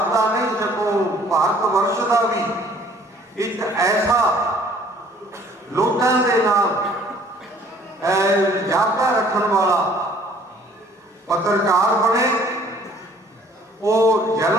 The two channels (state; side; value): normal; both; correlation 0.56